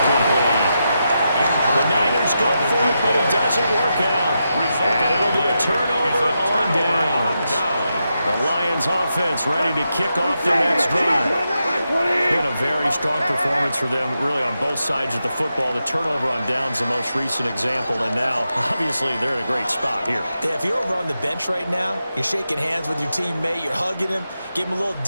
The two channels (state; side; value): inverted; both; correlation -0.86